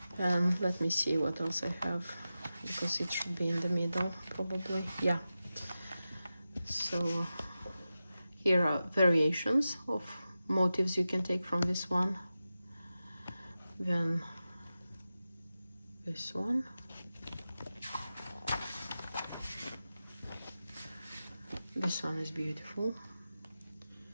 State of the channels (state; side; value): inverted; both; correlation -0.93